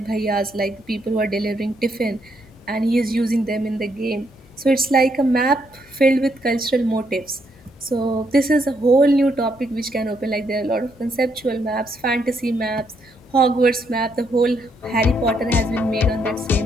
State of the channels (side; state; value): both; normal; correlation 0.75